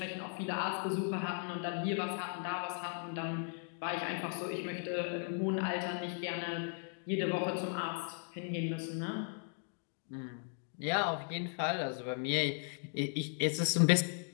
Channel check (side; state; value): right; silent; 53 dB below the other